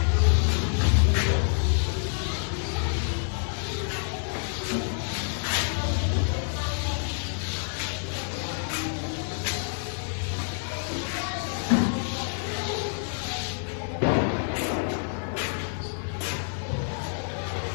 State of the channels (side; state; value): right; silent; 60 dB below the other